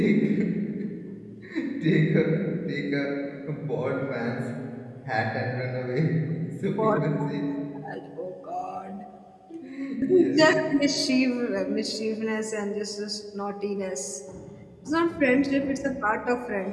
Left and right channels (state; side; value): identical; both; correlation 1.00